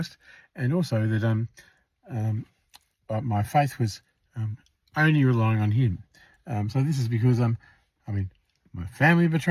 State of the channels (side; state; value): both; identical; correlation 1.00